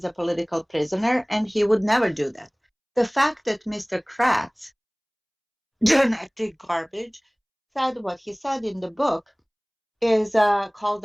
a political prisoner, and he would never do that. The fact that Mr. Kratz, genetic garbage, said what he said in the book is called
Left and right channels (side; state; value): both; identical; correlation 1.00